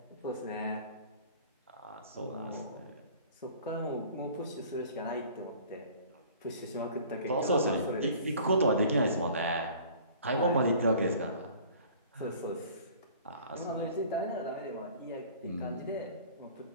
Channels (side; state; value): both; inverted; correlation -0.48